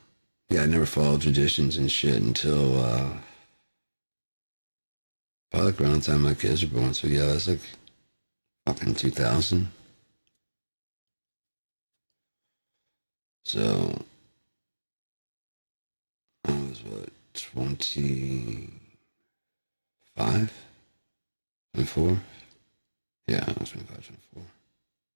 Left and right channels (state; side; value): inverted; both; correlation -1.00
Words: yeah, I never followed traditions and shit until probably like around the time my kids were born. So yeah, that's like fucking 2000. So I was what, 25, 24? Yeah, I was 25, 24.